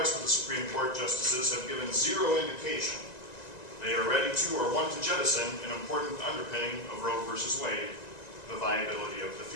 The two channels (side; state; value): right; late; 1.9 ms